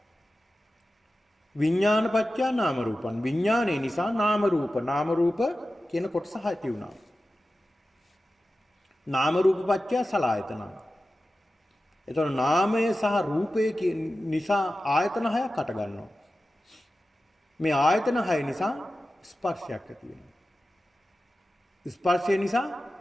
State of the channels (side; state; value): both; normal; correlation 0.94